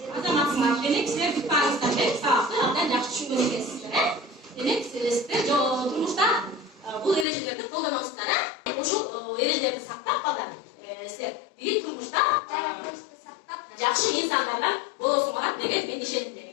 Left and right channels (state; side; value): drops out; right; at 7.2 s